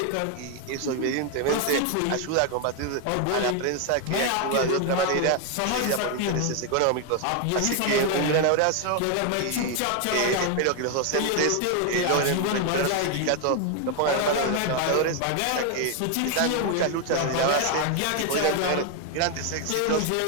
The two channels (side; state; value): both; different; correlation 0.01